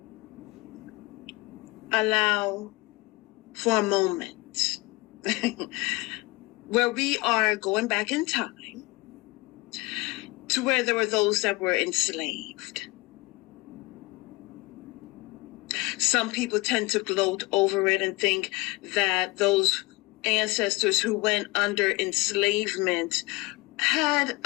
allow for a moment where we are going back in time to where there were those that were enslaved. Some people tend to gloat over it and think that those ancestors who went under enslavement had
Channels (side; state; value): right; quieter; 23.2 dB